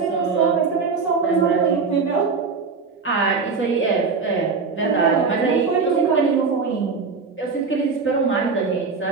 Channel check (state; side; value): quieter; left; 4.9 dB